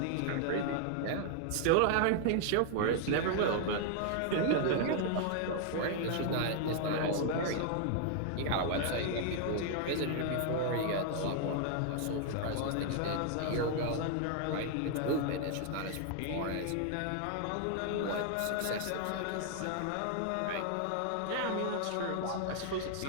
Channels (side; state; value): both; different; correlation 0.00